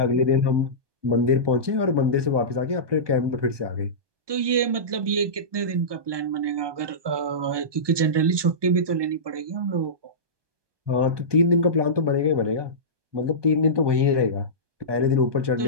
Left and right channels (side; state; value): left; late; 1.2 ms